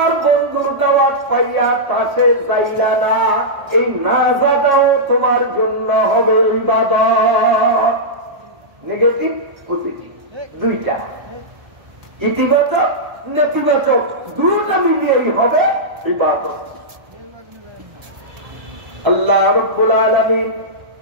বন্ধুর দাওয়াত পাইয়া তাসে যাইরা না, এই না যাওয়াটাও তোমার জন্য হবে ইবাদত। নেগেটিভ পজিটিভ দুইটা, ইতিবাচক নেতিবাচক দুটো মিলিয়েই হবে ইবাদত। আল্লাহ রাব্বুল আলামিন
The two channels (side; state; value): left; late; 1.3 ms